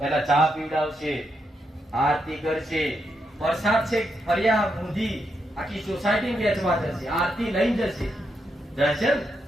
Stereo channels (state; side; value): normal; both; correlation 0.82